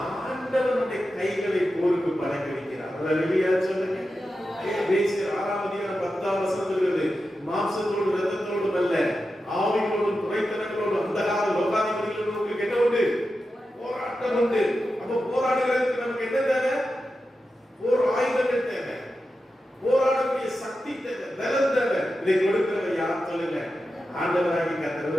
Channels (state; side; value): normal; both; correlation 0.91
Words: ஆண்டவனுடைய கைகளை போருக்கு பழக்க வைக்கிறார். அவரை வெளியா சொல்லுங்க. 6ஆம் அதிகாரம் 10ஆம் வசனம் சொல்கிறது, மாம்சத்தோடு இரத்தத்தோடும் அல்ல, ஆவியோடும் துணைத்தனங்களோடும் அந்த கால லோகாதிபதிகளோடு உங்களுக்கு என்ன உண்டு, போராட்டம் உண்டு. அப்ப போராடுகிறதுக்கு நமக்கு என்ன தேவை, போர் ஆயுதங்கள் தேவை, போராடக்கூடிய சக்தி தேவை, பலம் தேவை. இதை கொடுக்கிறவர் யார் சொல்லுங்க, ஆண்டவராகி